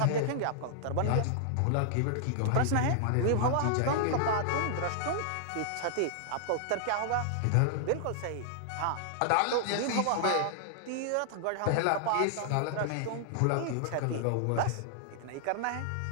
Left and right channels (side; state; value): both; different; correlation -0.01